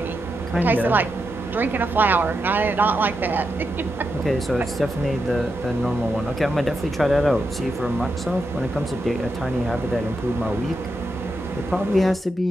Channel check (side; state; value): both; normal; correlation 0.86